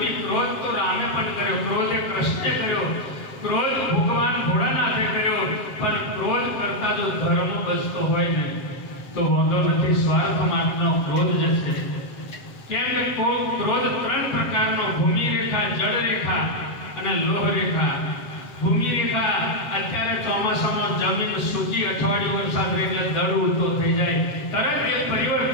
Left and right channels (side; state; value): right; late; 7.6 ms